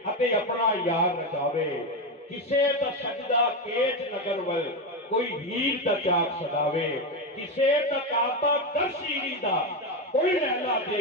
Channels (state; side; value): normal; both; correlation 0.11